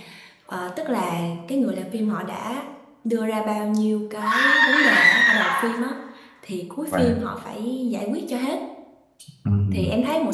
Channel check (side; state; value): both; identical; correlation 1.00